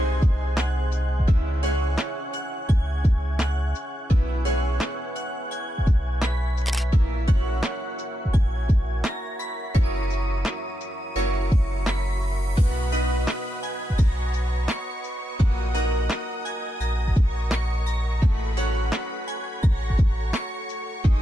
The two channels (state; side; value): normal; both; correlation 0.86